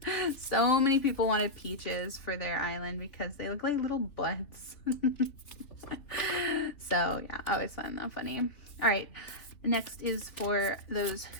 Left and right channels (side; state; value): right; late; 3.0 ms